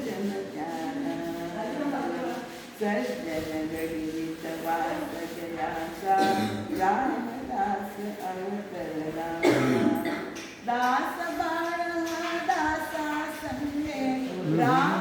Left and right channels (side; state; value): both; identical; correlation 1.00